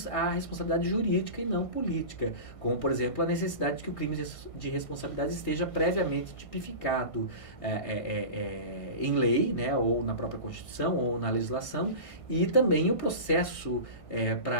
à responsabilidade jurídica e não política, como, por exemplo, a necessidade de que o crime de responsabilidade esteja previamente tipificado em lei, né, ou na própria Constituição, ou na legislação, e também o processo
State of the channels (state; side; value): late; right; 1.5 ms